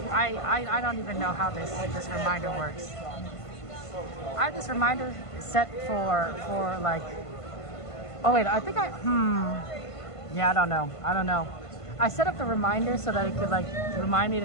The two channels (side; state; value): right; late; 1.5 ms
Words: I don't even know how this reminder works. I have this reminder set for like. Oh wait, I think yeah, I don't know. I set up the reminder so that it could like remind me